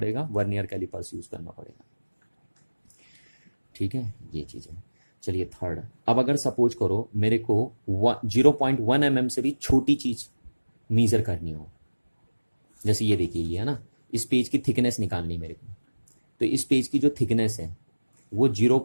वर्नियर कैलिपर्स यूज करना पड़ेगा। ठीक है, ये चीज है। चलिए थर्ड, अब अगर सपोज करो मेरे को 0.1 mm से भी छोटी चीज मेजर करनी हो, जैसे ये देखिए ये है ना, इस पेज की थिकनेस निकालनी मेरे को, तो इस पेज की जो थिकनेस है वो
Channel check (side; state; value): both; inverted; correlation -1.00